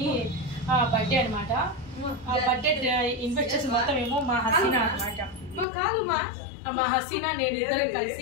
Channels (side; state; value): right; drops out; at 5.7 s